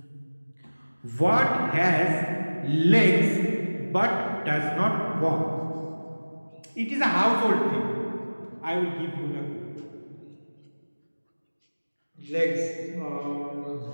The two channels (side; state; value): both; inverted; correlation -1.00